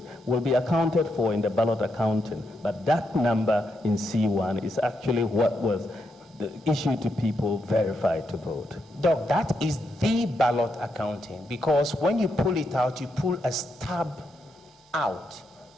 will be accounted for in the ballot accounting. But that number in C1 is actually what was issued to people verified to vote. Doc, that is the ballot accounting, because when you pull it out, you pull a stub out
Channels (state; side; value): normal; both; correlation 0.81